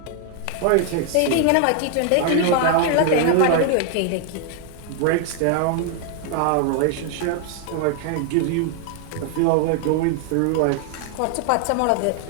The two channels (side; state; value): both; different; correlation 0.00